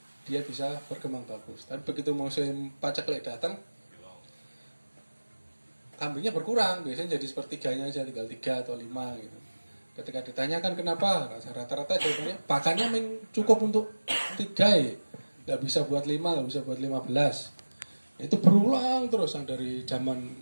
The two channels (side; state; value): both; inverted; correlation -1.00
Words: dia bisa berkembang bagus. Tapi begitu musim paceklik datang, kambingnya berkurang, biasanya jadi sepertiganya aja, tinggal 3 atau 5 gitu. Ketika ditanyakan kenapa, rata-rata jawabannya pakannya cukup untuk 3 ya. Gak bisa buat 5, gak bisa buat 15. Itu berulang terus dari zaman,